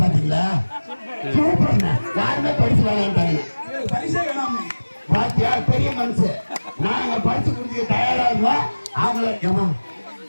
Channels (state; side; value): inverted; both; correlation -1.00